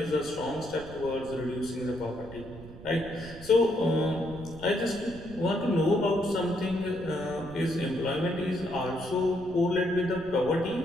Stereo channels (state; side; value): noise; right; rumble, 15 dB below the sound